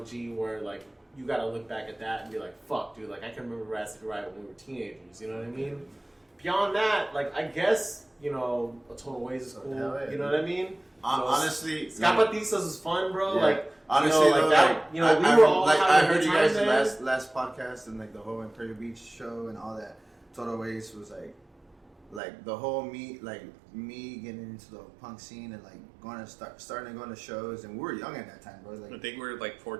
where, like, you gotta look back at that and be like, fuck, dude, like, I can remember Rhapsody Riot when we were teenagers, you know what I mean? Beyond that, like, I guess, you know, A Total Ways is cool, you know what I mean? Honestly, Ska-Patistas is fun, bro. Yeah. Like, honestly, you know, like that, you know, we were all like, I heard you guys the last podcast and like the whole Imperial Beach show and all that. Total Ways was like the whole me getting into the punk scene and like starting to go to shows, and we were young at that time, bro. Like, I think we were like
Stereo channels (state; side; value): drops out; left; at 22.2 s